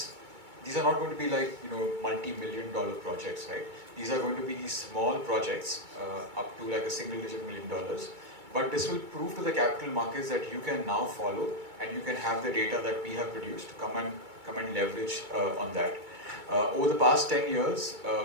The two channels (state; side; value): late; left; 2.2 ms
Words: are not going to be like multi-million-dollar projects, right? These are going to be these small projects up to like a single-digit $1 million. But this will prove to the capital markets that you can now follow, and you can have the data that we have produced, come and leverage on that. Over the past 10 years,